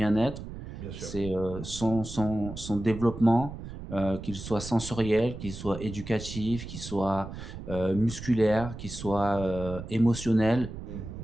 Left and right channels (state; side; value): noise; right; rumble, 10 dB below the sound